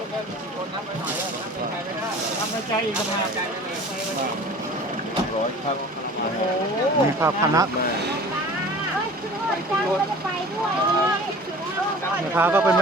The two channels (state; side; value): normal; both; correlation 0.43